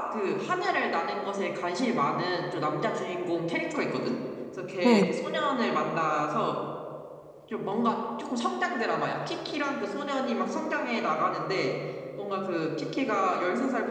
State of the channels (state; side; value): identical; both; correlation 1.00